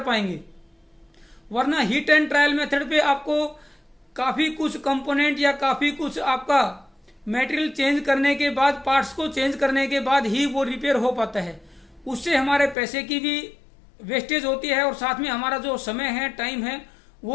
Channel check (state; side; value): drops out; right; at 12.8 s